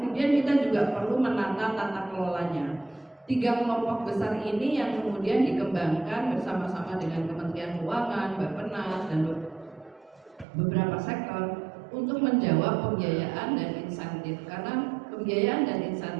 kita juga perlu menata tata kelolanya. 3 kelompok besar ini yang kemudian dikembangkan bersama-sama dengan Kementerian Keuangan, Bappenas dan beberapa sektor untuk menjawab pembiayaan dan insentif, karena pembiayaan dan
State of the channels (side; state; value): left; drops out; at 10.5 s